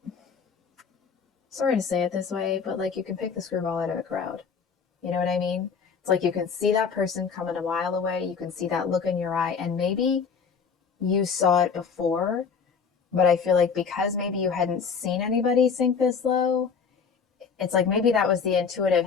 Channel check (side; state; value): right; quieter; 6.0 dB